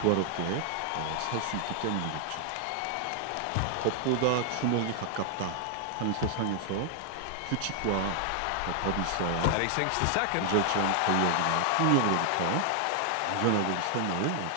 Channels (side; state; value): both; different; correlation 0.00